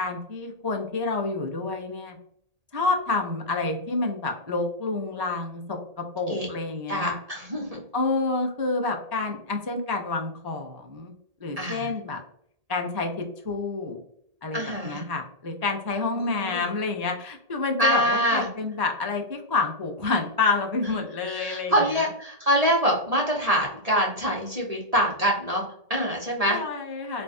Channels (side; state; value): left; late; 1.8 ms